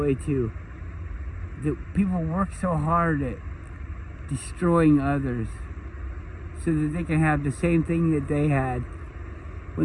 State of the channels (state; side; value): identical; both; correlation 1.00